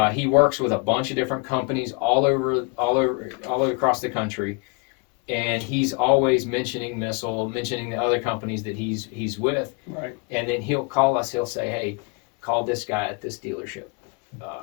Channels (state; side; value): quieter; right; 31.1 dB